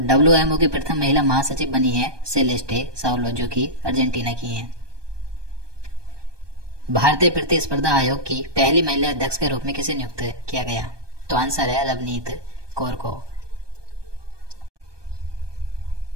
WMO की प्रथम महिला महासचिव बनी है सेलेस्टे साउलो, जो कि अर्जेंटीना की हैं। भारतीय प्रतिस्पर्धा आयोग की पहली महिला अध्यक्ष के रूप में किसे नियुक्त किया गया? तो आंसर है रवनीत कौर को।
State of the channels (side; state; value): left; late; 1.2 ms